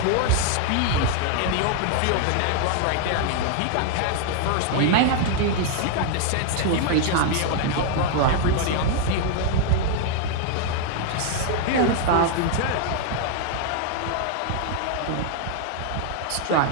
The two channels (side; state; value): both; different; correlation 0.00